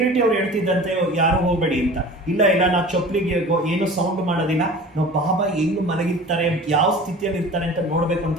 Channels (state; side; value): normal; both; correlation 0.40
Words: ಅವ್ರು ಹೇಳ್ತಿದ್ದಂತೆ ಯಾರು ಹೋಗ್ಬೇಡಿ ಅಂತ. ಇಲ್ಲ ಇಲ್ಲ, ನಾವು ಚಪ್ಪಲಿಗೆ ಏನು ಸೌಂಡ್ ಮಾಡೋದಿಲ್ಲ, ನಾವು ಬಾಬಾ ಹೆಂಗ್ ಮಲಗಿರ್ತಾರೆ, ಯಾವ ಸ್ಥಿತಿಯಲ್ಲಿ ಇರ್ತಾರೆ ಅಂತ ನೋಡ್ಬೇಕು